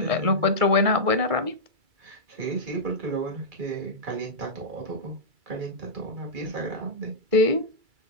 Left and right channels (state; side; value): late; left; 2.3 ms